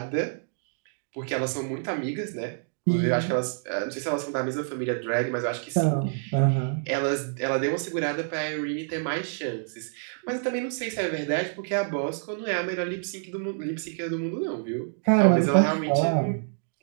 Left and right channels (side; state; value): left; silent; digital silence